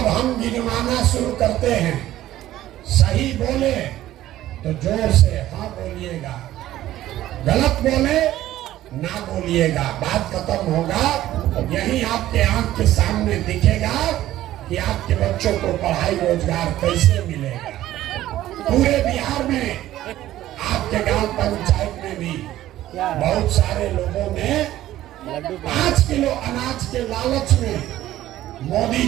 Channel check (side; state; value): left; quieter; 14.1 dB